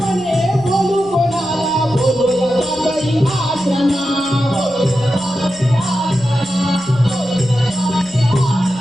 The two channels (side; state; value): right; noise; rumble, 26 dB below the sound